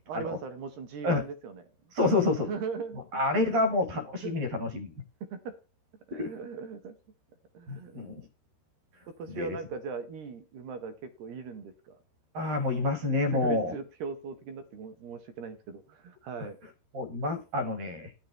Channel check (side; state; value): left; late; 13 ms